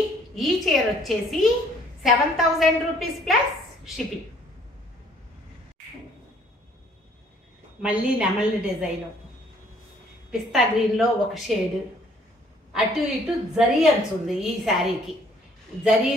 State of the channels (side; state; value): both; normal; correlation 0.61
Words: ఈ చీర వచ్చేసి 7000 రూపీస్ ప్లస్ షిప్పింగ్. మళ్ళీ నెమలి డిజైను, పిస్తా గ్రీన్లో ఒక షేడ్, అటు ఇటు జరీ అంచుంది ఈ శారీకి.